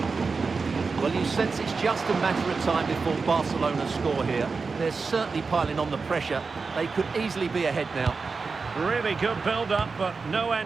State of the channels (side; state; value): left; quieter; 4.6 dB